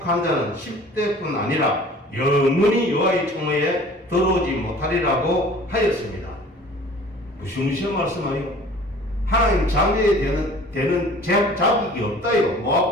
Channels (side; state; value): both; normal; correlation 0.47